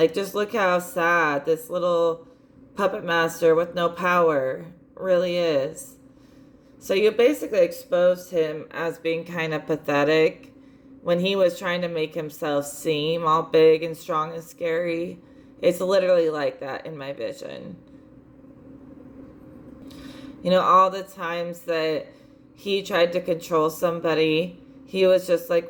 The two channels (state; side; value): identical; both; correlation 1.00